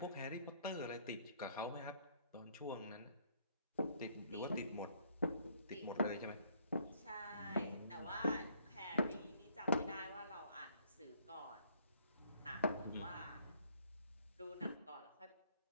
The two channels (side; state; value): both; inverted; correlation -0.64